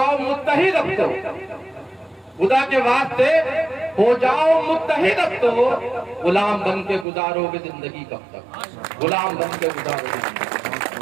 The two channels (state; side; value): drops out; left; at 7.1 s